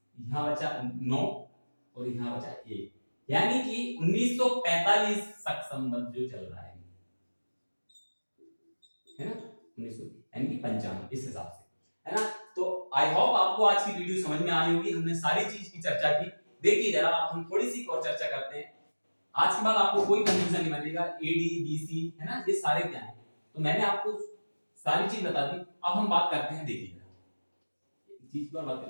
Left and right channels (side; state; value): both; inverted; correlation -1.00